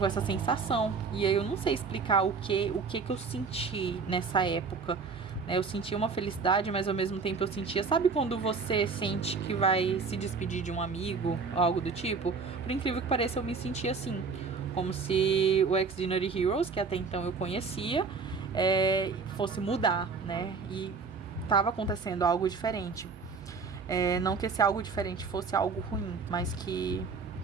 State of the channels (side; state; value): left; quieter; 4.8 dB